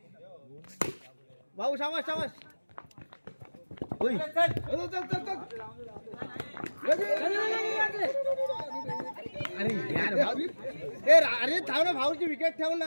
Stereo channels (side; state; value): both; inverted; correlation -1.00